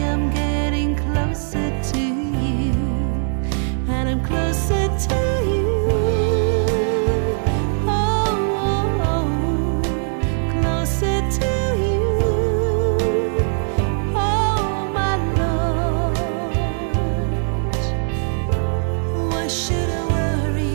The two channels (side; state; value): left; silent; 59 dB below the other